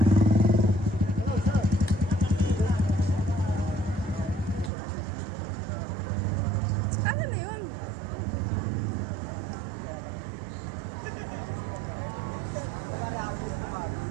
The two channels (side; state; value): left; drops out; at 4.7 s